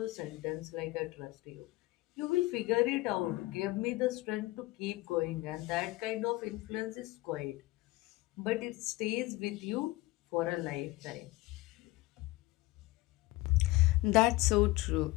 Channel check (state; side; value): quieter; right; 19.9 dB